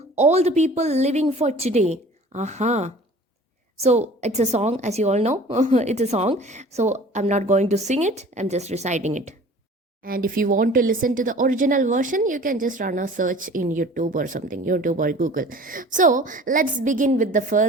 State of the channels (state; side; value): normal; both; correlation 0.46